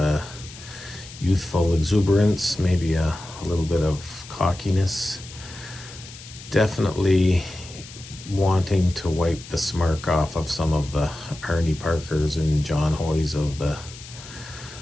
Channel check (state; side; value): noise; left; hiss, 16 dB below the sound